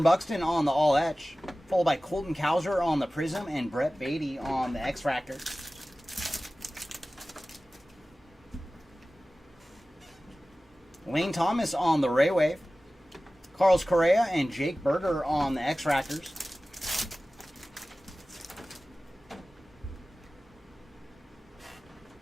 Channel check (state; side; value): normal; both; correlation 0.97